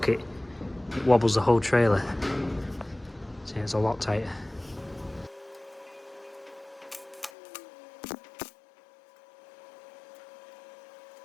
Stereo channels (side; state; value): right; drops out; at 7.3 s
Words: it, it wobbles the whole trailer. So it's a lot tighter.